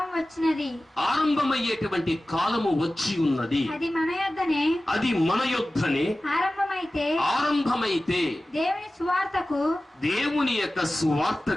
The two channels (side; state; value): both; normal; correlation 0.96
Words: వచ్చినది, ఆరంభమయ్యేటువంటి కాలము వచ్చి ఉన్నది. అది మన యొద్దనే, అది మన యొద్దనే ఆరంభమైతే దేవుని సువార్తకు, దేవుని యొక్క